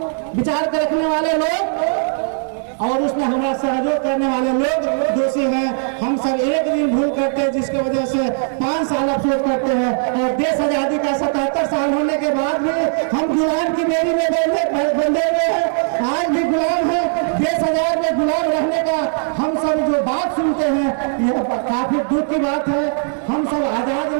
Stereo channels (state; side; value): silent; left; digital silence